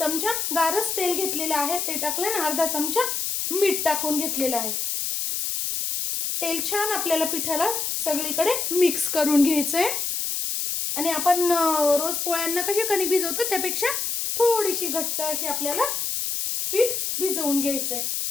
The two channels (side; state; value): left; noise; hiss, 1 dB below the sound